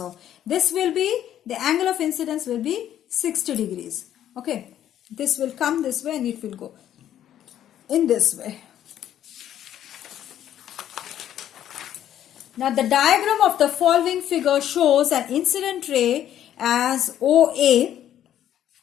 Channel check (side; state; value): right; quieter; 11.1 dB